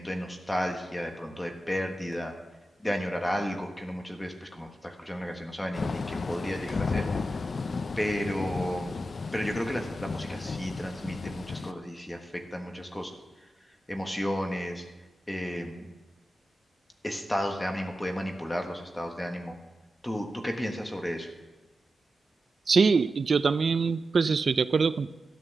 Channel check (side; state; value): both; normal; correlation 0.92